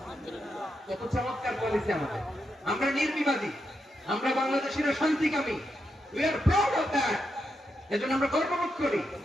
কত চমৎকার পলিসি আমাদের। আমরা নির্বিবাদী, আমরা বাংলাদেশিরা শান্তিকামী। We are proud of that. এজন্য আমরা গর্ববোধ করি।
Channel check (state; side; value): normal; both; correlation 0.84